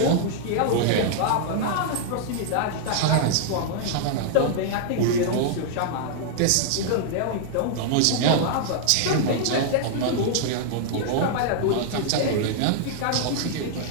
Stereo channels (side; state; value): both; different; correlation -0.01